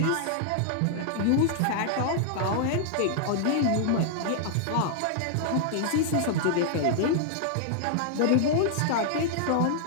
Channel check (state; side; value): different; both; correlation -0.01